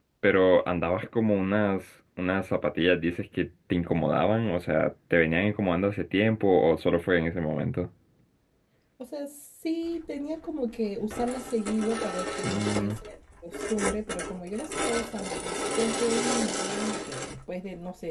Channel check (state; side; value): identical; both; correlation 1.00